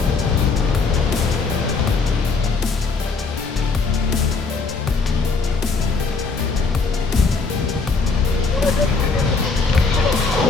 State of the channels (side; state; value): right; quieter; 4.3 dB